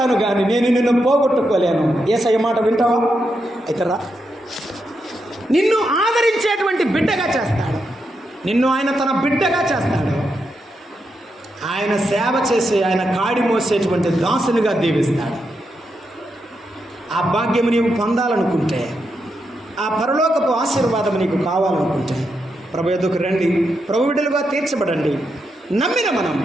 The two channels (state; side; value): normal; both; correlation 0.84